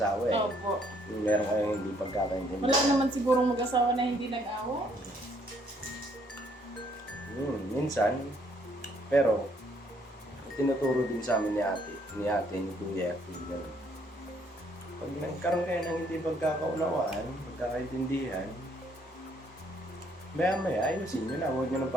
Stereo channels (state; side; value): normal; both; correlation 0.67